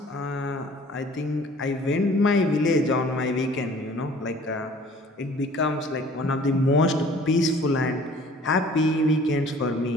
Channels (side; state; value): both; normal; correlation 0.51